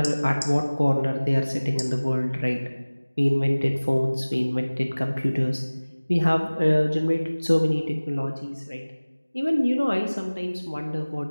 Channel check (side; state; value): both; inverted; correlation -1.00